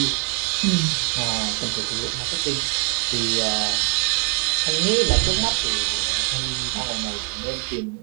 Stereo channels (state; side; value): quieter; left; 30.9 dB